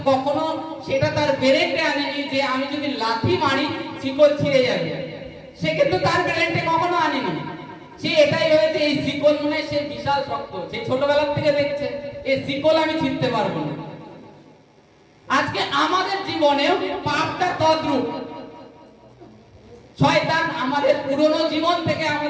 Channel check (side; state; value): both; identical; correlation 1.00